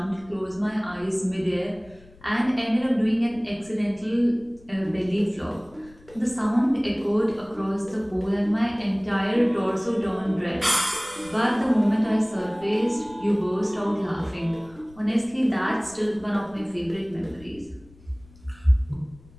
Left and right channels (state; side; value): noise; left; rumble, 25 dB below the sound